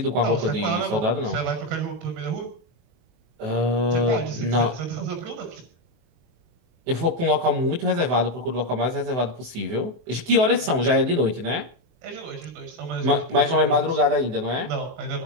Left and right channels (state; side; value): late; left; 24 ms